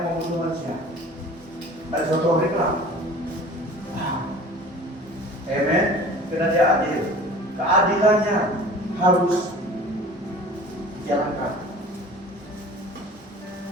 membunuh manusia. Pada suatu hari kelak. Amen. Karena dia adil. Keadilannya harus dijalankan.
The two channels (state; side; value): normal; both; correlation 0.43